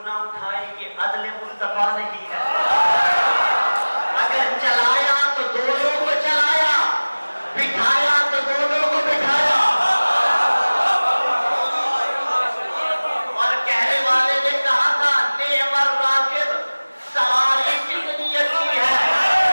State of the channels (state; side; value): inverted; both; correlation -1.00